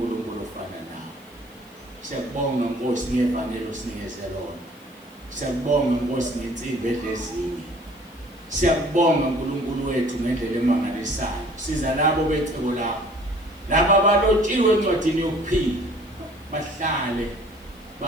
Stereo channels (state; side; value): noise; left; hiss, 28 dB below the sound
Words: ofana nawe siyakubonga Nkosi ngevangeli osinikeze lona siyakubonga Nkosi ngensimbi edlezinye siyakubonga uNkulunkulu wethu ngendlela emangalisayo siza labo becebo lakho laba abalotshiwe encwadini yokuphila bahlale